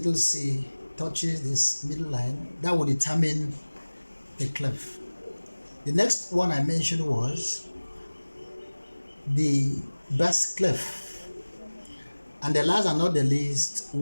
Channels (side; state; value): both; inverted; correlation -1.00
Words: C touches this middle line, that will determine the clef. The next one I mentioned was the bass clef, and the last and not the least